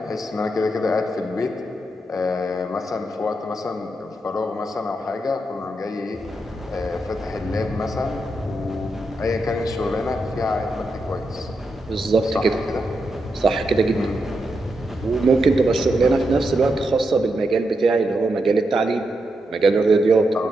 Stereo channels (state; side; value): normal; both; correlation 0.84